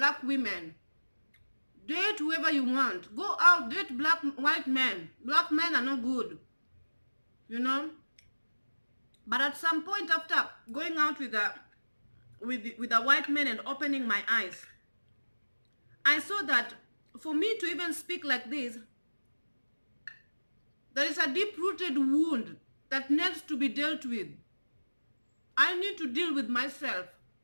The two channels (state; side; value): inverted; both; correlation -1.00